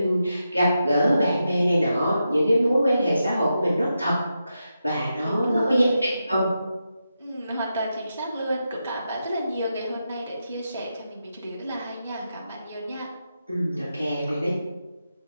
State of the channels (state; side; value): inverted; both; correlation -0.87